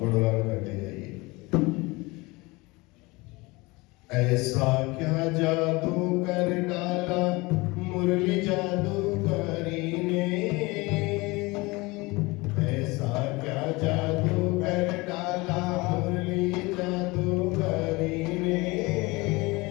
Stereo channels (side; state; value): right; quieter; 23.8 dB